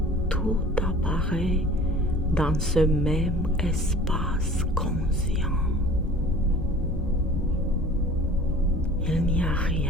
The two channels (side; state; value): both; normal; correlation 0.46